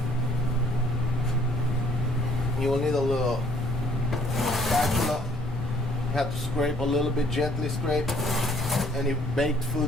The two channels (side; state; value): both; normal; correlation 0.61